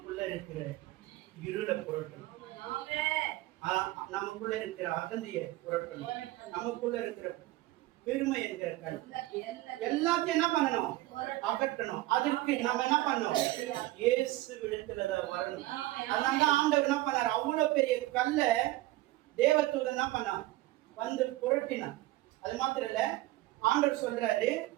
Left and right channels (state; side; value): quieter; left; 17.8 dB